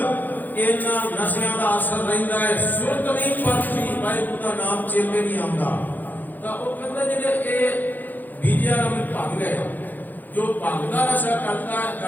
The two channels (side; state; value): right; late; 0.085 ms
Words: ਇਹਨਾਂ ਨਸ਼ਿਆਂ ਦਾ ਅਸਰ ਰਹਿੰਦਾ ਹੈ, ਸੁਰਤ ਨਹੀਂ ਪਰਤੀ, ਵਾਹਿਗੁਰੂ ਦਾ ਨਾਮ ਚੇਤੇ ਨਹੀਂ ਆਉਂਦਾ। ਤਾਂ ਉਹ ਕਹਿੰਦਾ ਜਿਹੜੇ ਇਹ ਬੀਜਿਆ ਨੂੰ ਭੰਗ ਹੈ, ਜੋ ਭੰਗ ਦਾ ਨਸ਼ਾ